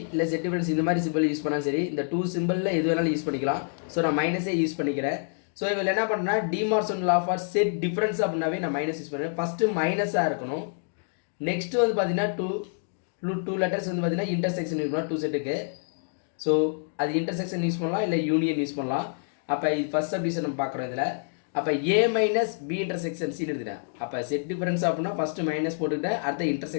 இல்லை செட் டிஃபரன்ஸ் இந்த மாதிரி சிம்பிள் யூஸ் பண்ணாலும் சரி, இந்த 2 சிம்பிளில் எது வேணாலும் யூஸ் பண்ணிக்கலாம். ஸோ நான் மைனஸே யூஸ் பண்ணிக்கிறேன். ஸோ இதில் என்ன பண்ணேன்னா De Morgan law for set difference அப்படின்னாவே நான் மைனஸ் யூஸ் பண்ணுறேன். ஃபஸ்ட்டு மைனஸாக இருக்கணும். நெக்ஸ்ட்டு வந்து பார்த்தீங்கன்னா டூ லெட்டர்ஸ் வந்து பார்த்தீங்கன்னா இன்டர்செக்ஷன் யூஸ் பண்ணலாம் 2 செட்டுக்கு. ஸோ அது இன்டர்செக்ஷன் யூஸ் பண்ணலாம், இல்லை யூனியன் யூஸ் பண்ணலாம். அப்போ இது ஃபஸ்ட் சப்டிவிஷன் நம்ம பார்க்குறோம் இதில். அப்போ ஏ மைனஸ் பி இன்டர்செக்ஷன் சின்னு எடுத்துட்டேன். அப்போ செட் டிஃபரன்ஸ் அப்படின்னா ஃபஸ்ட்டு மைனஸ் போட்டுக்கிட்டேன், அடுத்த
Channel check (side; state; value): right; silent; digital silence